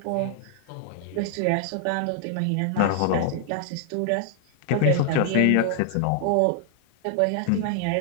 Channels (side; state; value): both; different; correlation 0.00